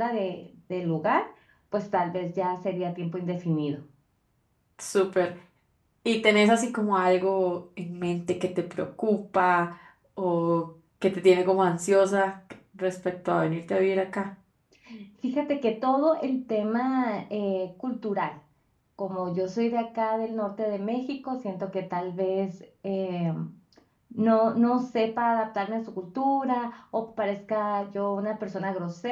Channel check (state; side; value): identical; both; correlation 1.00